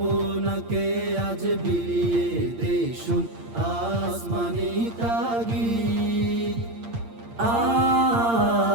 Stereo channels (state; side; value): late; left; 8.7 ms